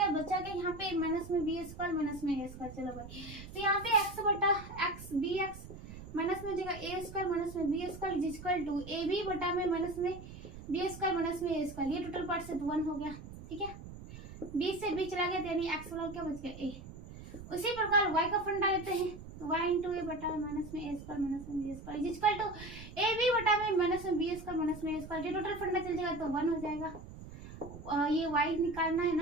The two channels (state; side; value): noise; right; rumble, 14 dB below the sound